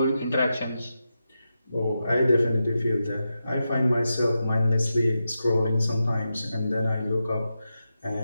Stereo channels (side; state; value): both; inverted; correlation -0.89